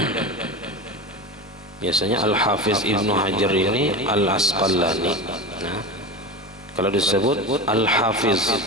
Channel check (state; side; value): normal; both; correlation 0.26